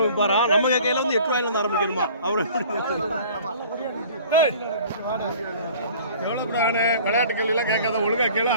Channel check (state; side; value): inverted; both; correlation -0.47